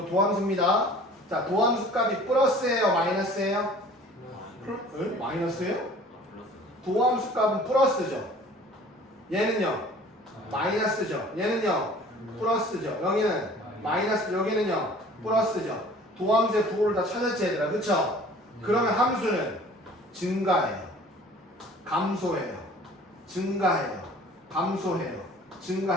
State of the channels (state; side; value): normal; both; correlation 0.49